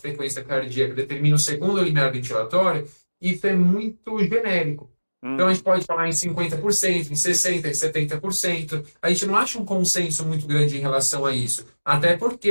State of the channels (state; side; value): inverted; both; correlation -1.00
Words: cardíaca determina o segundo limiar ventilatório, isso é muito genérico. Então, a gente pode falar em 50%, em 60%, em 70%. A gente não acha um consenso muito grande em relação a isso. Até